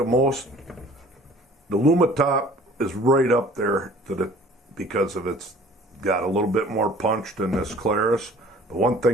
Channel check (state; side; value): normal; both; correlation 0.50